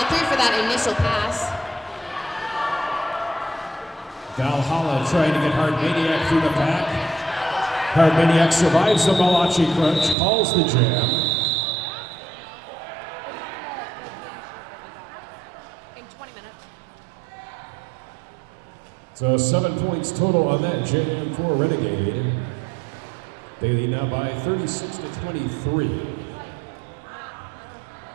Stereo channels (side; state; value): left; drops out; at 10.2 s